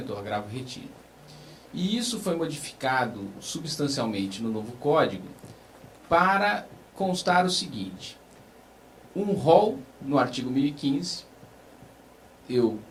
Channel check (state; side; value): identical; both; correlation 1.00